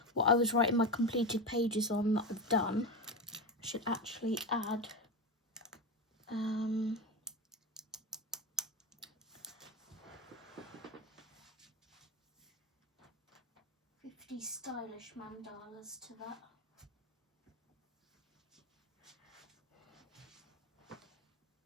what I was writing my completed pages on that I've done. I should actually add 50 stylish mandalas to that.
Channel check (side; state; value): both; normal; correlation 0.18